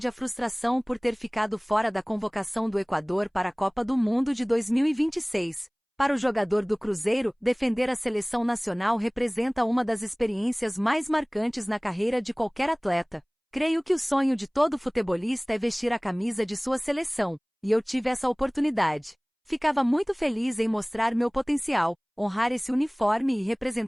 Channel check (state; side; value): identical; both; correlation 1.00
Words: a frustração por ter ficado fora da convocação do Equador para a Copa do Mundo de 2026. Para o jogador do Cruzeiro, defender a seleção nacional representa uma das experiências mais marcantes na carreira de qualquer atleta. Creio que o sonho de todo futebolista é vestir a camisa de sua seleção, e eu tive essa oportunidade. Ficava muito feliz em mostrar meu potencial, honrar esse uniforme e